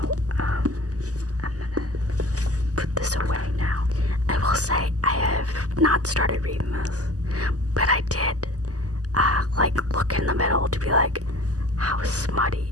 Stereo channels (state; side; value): late; left; 0.67 ms